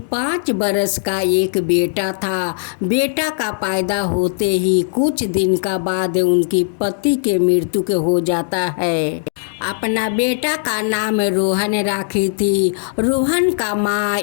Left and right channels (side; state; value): right; silent; digital silence